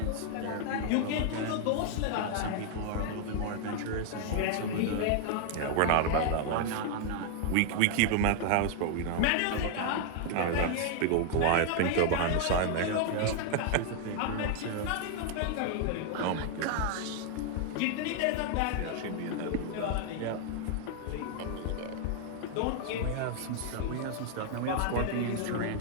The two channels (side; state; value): both; different; correlation 0.00